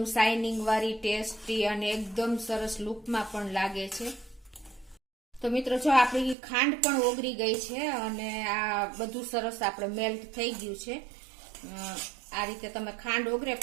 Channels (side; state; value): left; drops out; at 6.4 s